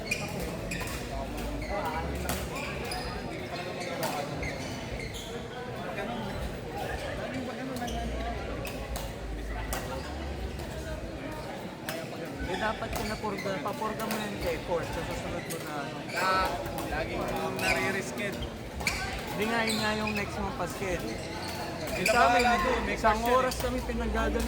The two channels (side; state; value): both; identical; correlation 1.00